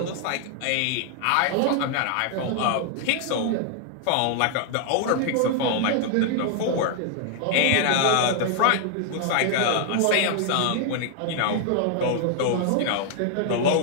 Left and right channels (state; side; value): different; both; correlation 0.00